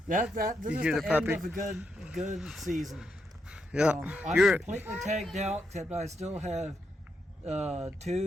this You is hear the the end puppy? of a good season. Yeah, I'm you're completely tagged out, except I still have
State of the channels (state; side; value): normal; both; correlation 0.82